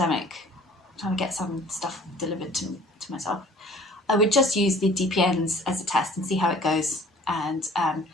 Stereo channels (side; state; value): both; normal; correlation 0.51